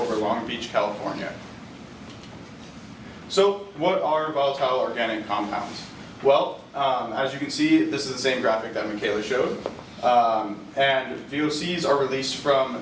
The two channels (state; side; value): identical; both; correlation 1.00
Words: Long Beach, California. So, what are volatile organic compounds? Well, as you can see, this is the same graphic that Michaela showed. And VOCs are released